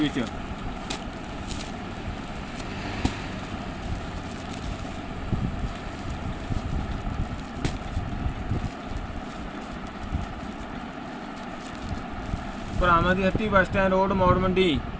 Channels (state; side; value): identical; both; correlation 1.00